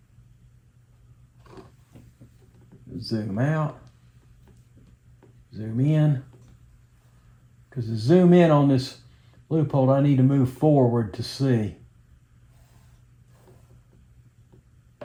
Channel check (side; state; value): both; identical; correlation 1.00